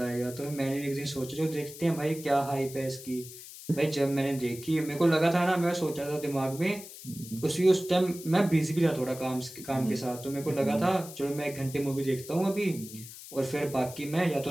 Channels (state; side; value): noise; left; hiss, 14 dB below the sound